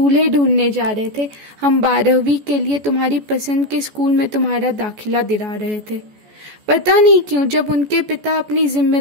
ढूंढने जा रहे थे, हम 12वीं के लिए तुम्हारी पसंद के स्कूल में तुम्हारा दाखिला दिला रहे थे। पता नहीं क्यों जब उनके पिता अपनी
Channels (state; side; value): late; left; 14 ms